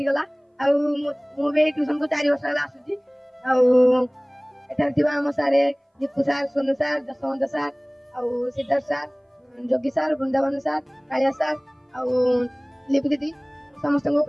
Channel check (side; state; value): both; identical; correlation 1.00